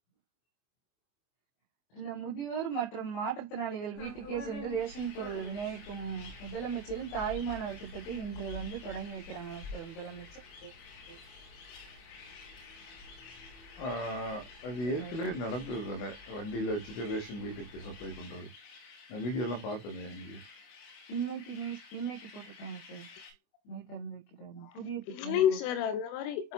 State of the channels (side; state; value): right; late; 24 ms